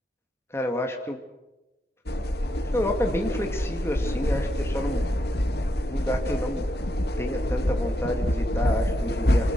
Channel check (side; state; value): both; normal; correlation 0.82